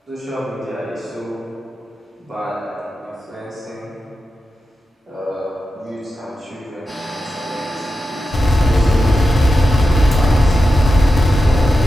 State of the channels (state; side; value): normal; both; correlation 0.91